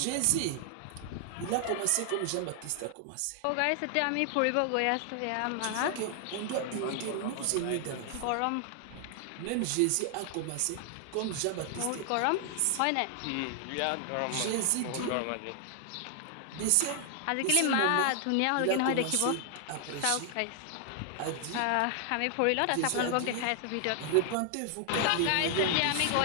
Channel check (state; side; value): different; both; correlation 0.00